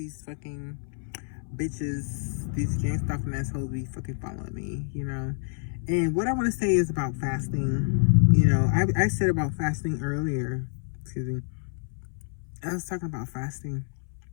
fucking bitches, these gang stalking assholes be fucking following me, And what I want to say is about fasting. I said about fasting earlier. Excuse me. I was talking about fasting.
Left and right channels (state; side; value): silent; right; 59 dB below the other